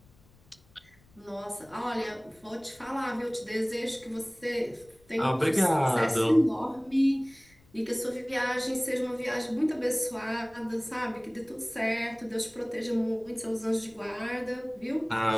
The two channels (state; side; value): noise; left; rumble, 29 dB below the sound